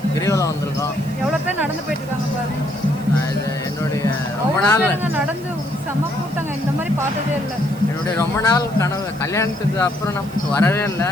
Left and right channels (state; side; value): noise; right; hiss, 23 dB below the sound